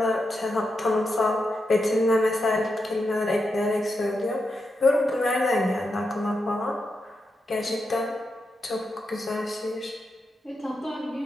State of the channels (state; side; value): normal; both; correlation 0.86